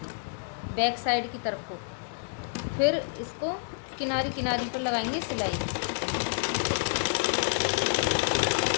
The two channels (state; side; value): silent; right; digital silence